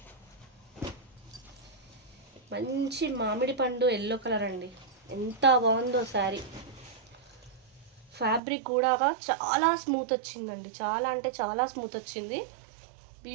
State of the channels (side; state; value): left; drops out; at 8.4 s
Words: మంచి మామిడి పండు ఎల్లో కలర్ అండి, ఎంత బాగుందో శారీ. ఫ్యాబ్రిక్ కూడా చాలా స్మూత్ వచ్చిందండి, చాలా అంటే చాలా స్మూత్ వచ్చింది,